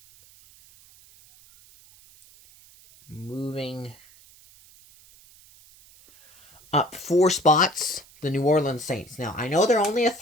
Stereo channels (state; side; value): noise; right; hiss, 26 dB below the sound